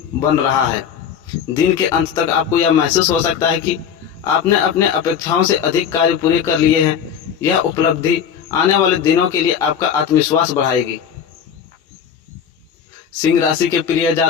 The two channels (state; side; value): quieter; right; 7.9 dB